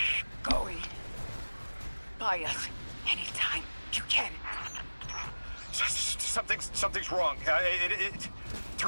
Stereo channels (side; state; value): both; inverted; correlation -1.00